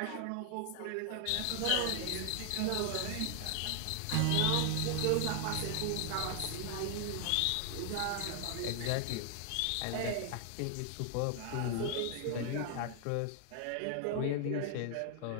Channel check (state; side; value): different; both; correlation 0.00